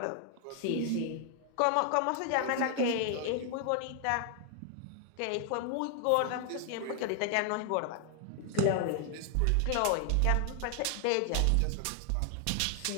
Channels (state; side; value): different; both; correlation 0.00